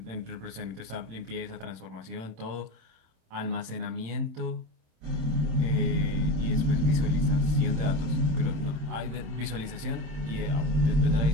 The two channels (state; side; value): late; left; 26 ms